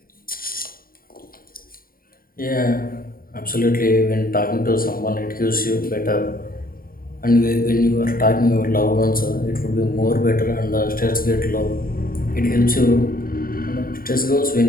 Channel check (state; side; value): late; right; 0.42 ms